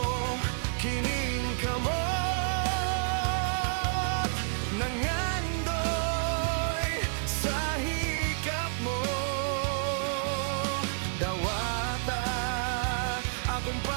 kining kamot, nangandoy sa hikap mo. Dawata akong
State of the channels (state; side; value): silent; left; digital silence